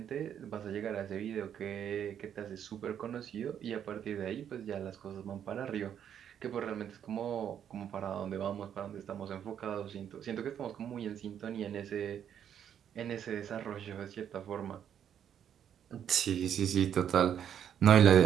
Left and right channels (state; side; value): quieter; left; 9.2 dB